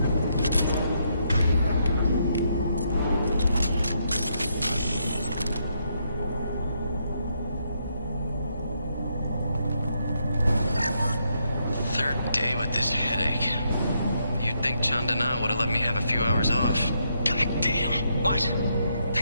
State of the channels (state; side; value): inverted; both; correlation -0.77